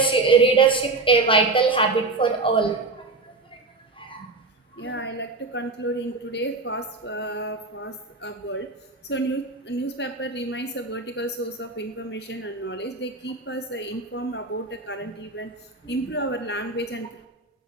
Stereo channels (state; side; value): quieter; left; 3.5 dB